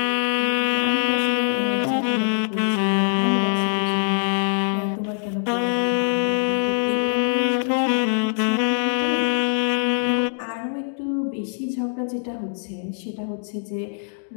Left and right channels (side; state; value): right; silent; digital silence